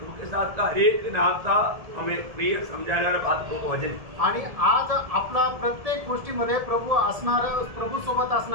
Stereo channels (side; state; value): left; late; 1.7 ms